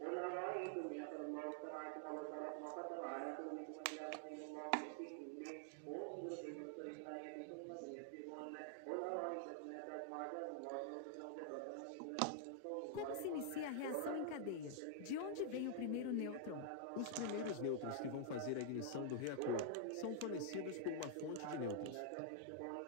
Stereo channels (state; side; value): different; both; correlation 0.00